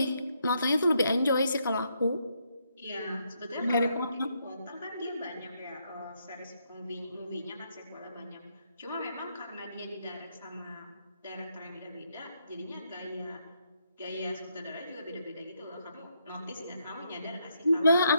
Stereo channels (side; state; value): both; inverted; correlation -0.76